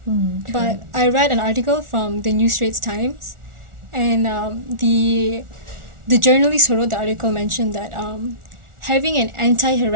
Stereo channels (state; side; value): late; left; 1.4 ms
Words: But I read an article from the New Straits Times, and the journalist who wrote the article mentioned that having an